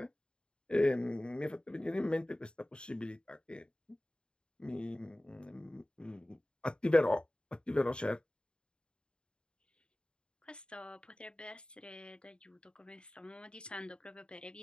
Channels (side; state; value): right; late; 0.051 ms